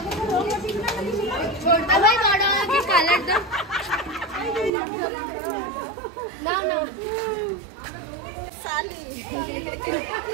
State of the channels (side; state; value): left; drops out; at 4.7 s